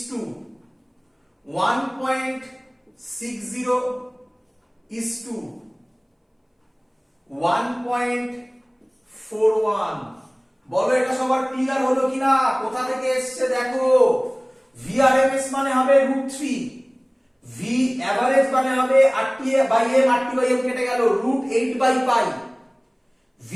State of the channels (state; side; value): identical; both; correlation 1.00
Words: to 1.60 is to 1.41। বলো এটা সবার ক্লিয়ার হলো কিনা? কোথা থেকে এসছে দেখো, VRMS মানে হবে √3, V অ্যাভারেজ মানে হবে RT/m, RT/m কেটে গেল, √8/π,